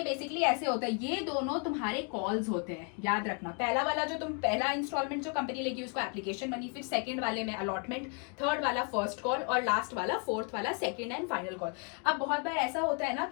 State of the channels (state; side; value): quieter; right; 35.3 dB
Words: बेसिकली ऐसे होता है, ये दोनों तुम्हारे कॉल्स होते हैं, याद रखना। पहला वाला जो तुम पहला इंस्टॉलमेंट जो कंपनी लेगी उसको एप्लीकेशन मनी, फिर सेकंड वाले में अलॉटमेंट, थर्ड वाला फर्स्ट कॉल और लास्ट वाला फोर्थ वाला सेकंड एंड फाइनल कॉल। अब बहुत बार ऐसा होता है ना